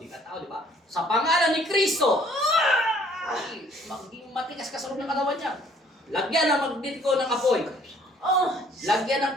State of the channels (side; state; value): both; normal; correlation 0.59